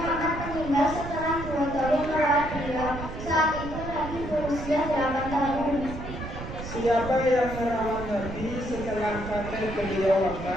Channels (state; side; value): noise; right; rumble, 9 dB below the sound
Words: meninggal setelah 2 tahun merawat beliau. Saat itu Nabi berusia 8 tahun. Siapa yang merawat Nabi setelah kakek beliau